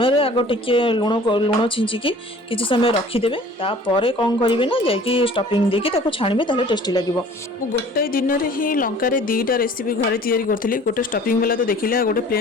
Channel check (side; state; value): both; normal; correlation 0.49